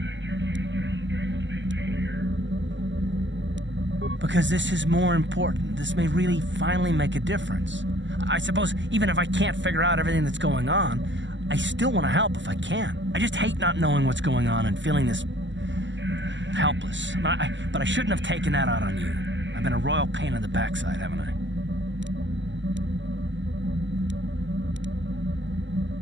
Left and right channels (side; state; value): left; late; 0.54 ms